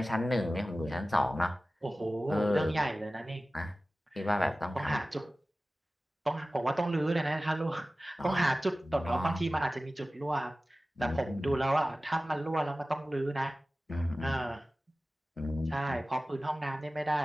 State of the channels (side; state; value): both; normal; correlation 0.96